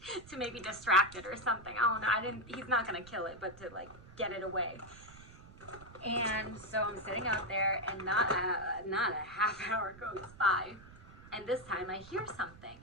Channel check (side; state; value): right; noise; rumble, 19 dB below the sound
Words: to maybe distract it or something. I don't know. He's not gonna kill it, but to like get it away. And so I'm sitting out there, and not a half hour goes by, and this time I hear something,